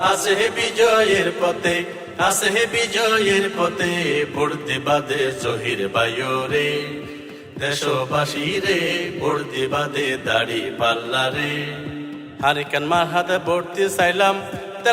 আছে বিজয়ের পথে, আছে বিজয়ের পথে। ভোট দিবা দে জহির ভাইও রে, দেশবাসী রে ভোট দিবা দে দাড়ি পাল্লা রে। হারিকেন মারহাতে ভোট দিছাইলাম,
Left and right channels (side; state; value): both; identical; correlation 1.00